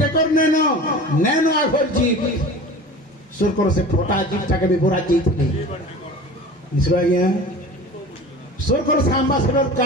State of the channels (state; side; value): normal; both; correlation 0.38